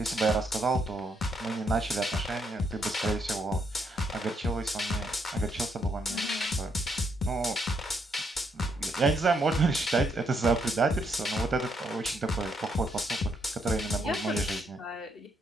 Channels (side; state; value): both; normal; correlation 0.75